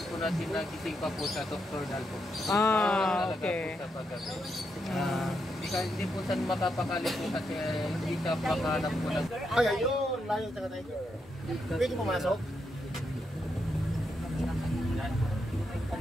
po natin na gising pa po sa nocturnal po. Okay. Hindi po saan makapakali po kasi hindi ka makahanap po ng... Ay, ayun, layo sa tiger. Pwede pumasok?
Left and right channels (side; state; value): both; normal; correlation 0.82